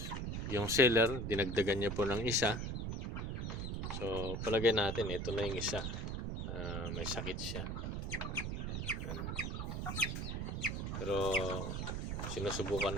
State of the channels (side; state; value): right; noise; rumble, 3 dB below the sound